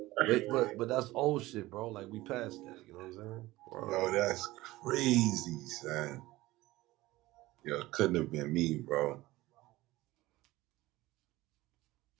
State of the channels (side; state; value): left; quieter; 18.4 dB